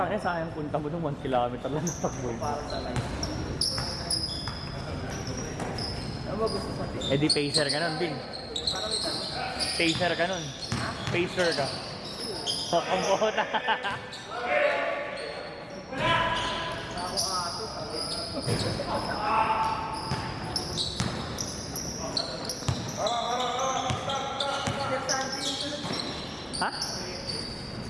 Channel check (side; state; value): both; identical; correlation 1.00